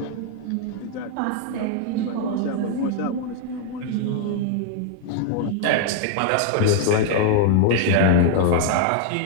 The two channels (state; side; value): different; both; correlation 0.00